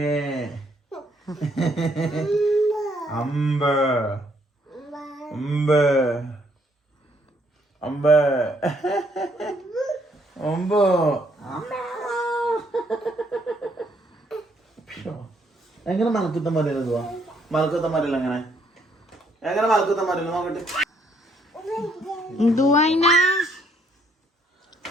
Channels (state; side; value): normal; both; correlation 0.70